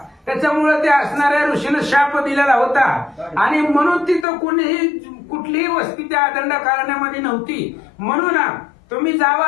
त्याच्यामुळे त्या असणाऱ्या ऋषीनं शाप दिलेला होता आणि म्हणून तिथं कुठलीही वस्ती त्या दंडकारण्यामध्ये नव्हती. म्हणून तुम्ही जावा,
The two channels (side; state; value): right; drops out; at 4.2 s